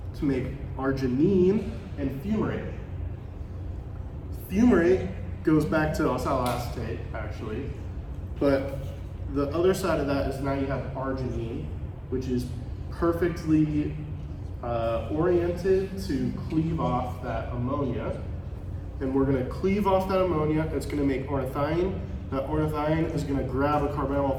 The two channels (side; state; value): both; identical; correlation 1.00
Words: to make arginine and fumarate. Fumarate goes back to oxaloacetate, actually, but the other side of that is now you have arginine, which is perfectly oriented to cleave off that ammonia. And we're gonna cleave off that ammonia, it's gonna make ornithine. That ornithine is gonna grab a carbonyl